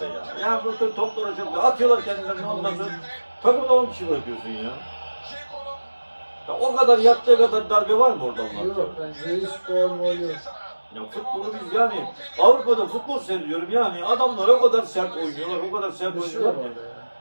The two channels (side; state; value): both; inverted; correlation -1.00